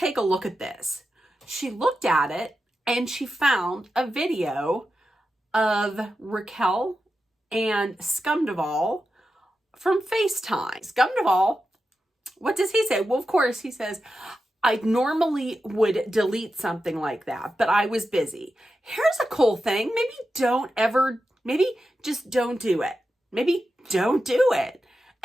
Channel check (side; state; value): both; normal; correlation 0.90